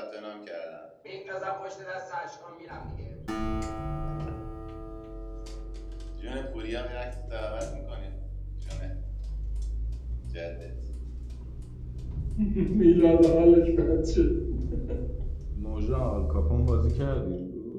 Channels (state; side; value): identical; both; correlation 1.00